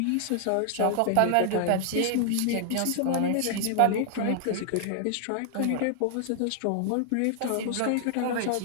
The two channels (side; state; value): both; different; correlation 0.00